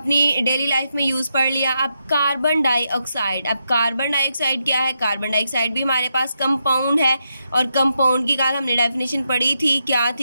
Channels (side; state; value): both; inverted; correlation -0.83